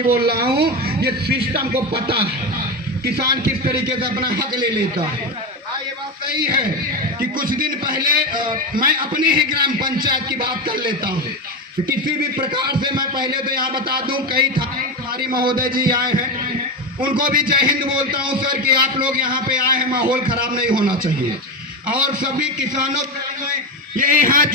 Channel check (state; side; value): normal; both; correlation 0.17